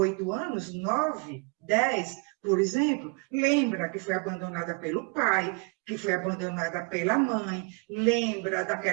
anos, 9, 10, por exemplo, lembra que foi abandonada pelo pai, que foi abandonada pela mãe, lembra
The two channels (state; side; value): quieter; left; 33.3 dB